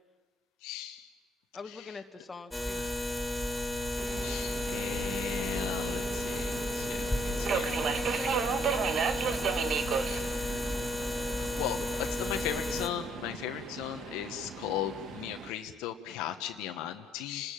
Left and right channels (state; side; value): normal; both; correlation 0.68